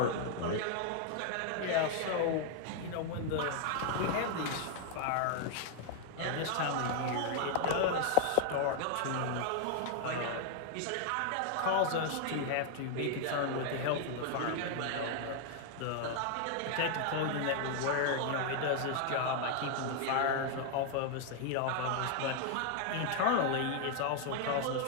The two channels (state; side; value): different; both; correlation 0.00